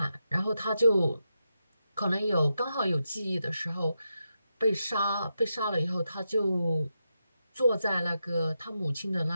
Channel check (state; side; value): inverted; both; correlation -0.87